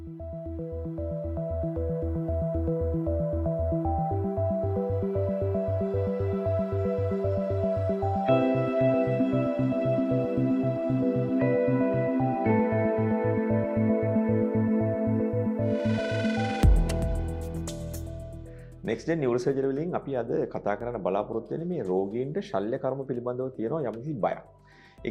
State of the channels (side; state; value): both; identical; correlation 1.00